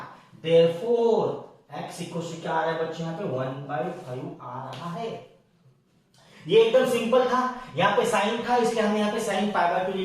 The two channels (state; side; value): identical; both; correlation 1.00